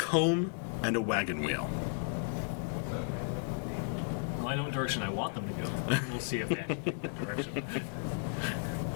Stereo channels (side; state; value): right; silent; digital silence